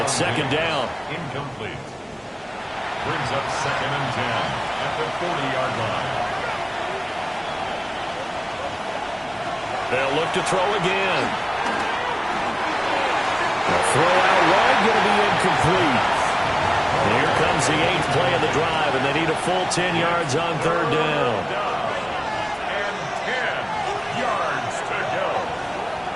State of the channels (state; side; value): identical; both; correlation 1.00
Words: 2nd down. Incomplete. Brings up 2nd and 10 at the 40-yard line. They'll look to throw again. The throw out wide going to be incomplete. Here comes the 8th play of the drive, and they need a full 10 yards on 3rd down. And 10 yards to go.